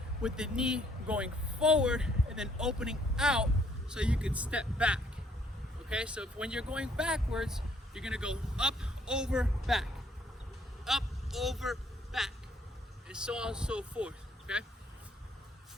with the knee going forward and then opening out so you can step back, Okay, so when you're going backwards, you're gonna go up, over, back. Up, over, back. And so on and so forth, okay?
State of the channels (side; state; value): both; normal; correlation 0.66